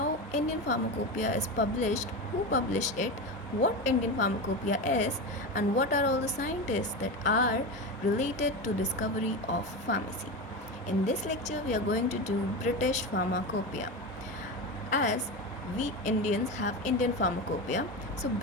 Indian pharmacopoeia is published, who published it, what Indian pharmacopoeia is, and what are all the scientists that are related to discovery of pharmacy. In this lecture we are going to do British pharmacopoeia. As we Indians have Indian pharmacopoeia, so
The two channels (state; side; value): normal; both; correlation 0.21